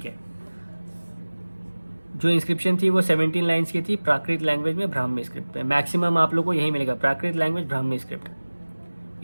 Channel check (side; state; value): both; inverted; correlation -1.00